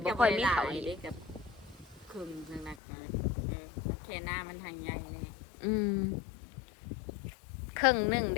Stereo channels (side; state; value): right; drops out; at 2.8 s